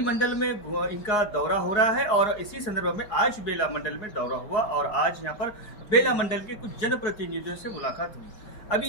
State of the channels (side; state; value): right; late; 4.8 ms